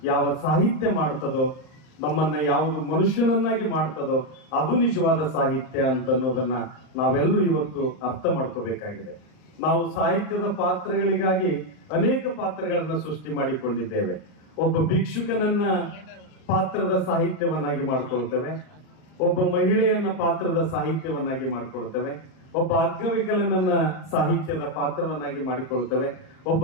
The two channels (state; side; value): late; right; 39 ms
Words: ಯಾವ ಸಾಹಿತ್ಯ ಮಾಡ್ತದೋ, ನಮ್ಮನ್ನ ಯಾವುದು ಮನುಷ್ಯನನ್ನಾಗಿ ಮಾಡ್ತದೋ, ಅದು ನಿಜವಾದ ಸಾಹಿತ್ಯ ಅಂತ ಅನ್ನೋದನ್ನ ನಾವೆಲ್ಲರೂ ಇವತ್ತು ಅರ್ಥ ಮಾಡ್ಕೋಬೇಕಾಗಿದೆ. ನಾವು ಸಾಹಿತ್ಯದ ಪಾತ್ರಗಳಿಗಾಗಿ ಅನೇಕ ಪಾತ್ರಗಳನ್ನ ಸೃಷ್ಟಿ ಮಾಡಿಕೊಂಡಿದ್ದೇವೆ. ಒಬ್ಬ ಭಿಕ್ಷುಕನನ್ನ ಪಾತ್ರದ ಸಾಹಿತ್ಯವನ್ನಾಗಿ ಮಾಡ್ಕೊಳ್ತೇವೆ, ಒಬ್ಬ ಮಹಿಳೆಯನ್ನ ಪಾತ್ರದ ಸಾಹಿತ್ಯವನ್ನಾಗಿ ಮಾಡ್ಕೊಳ್ತೇವೆ, ಒಬ್ಬ ಅಂಗವಿಕಲನನ್ನ ಸಾಹಿತ್ಯದ ಪಾತ್ರವನ್ನಾಗಿ ಮಾಡಿಕೊಳ್ತೇವೆ, ಒಬ್ಬ